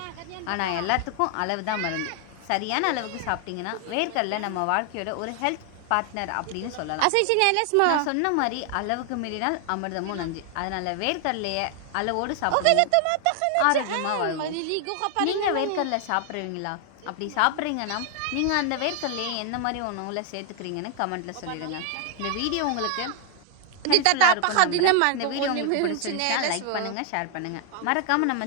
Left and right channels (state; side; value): different; both; correlation 0.00